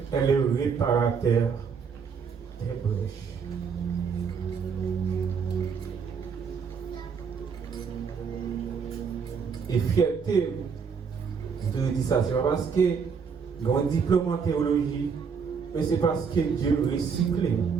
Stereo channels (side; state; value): left; quieter; 6.1 dB